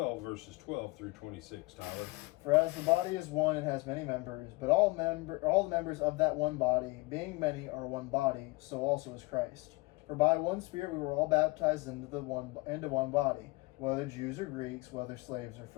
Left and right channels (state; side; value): quieter; right; 24.4 dB